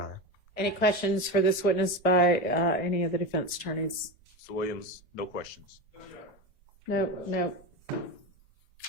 Any questions for this witness by any of the defense attorneys? Mr. Williams, no questions. No, no.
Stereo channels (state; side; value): normal; both; correlation 0.20